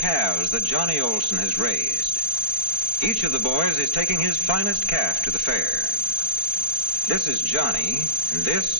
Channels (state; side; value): late; right; 4.5 ms